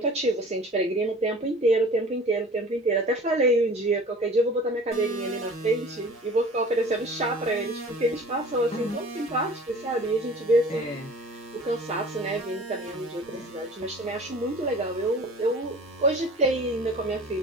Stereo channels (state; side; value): normal; both; correlation 0.44